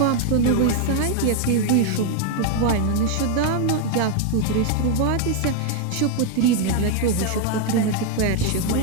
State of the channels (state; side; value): different; both; correlation 0.01